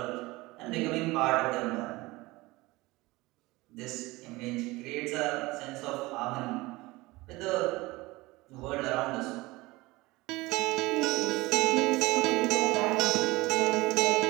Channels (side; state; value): left; quieter; 21.2 dB